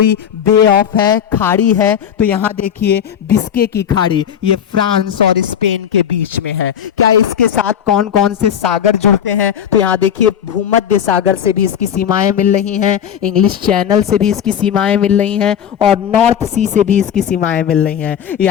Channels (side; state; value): right; quieter; 9.0 dB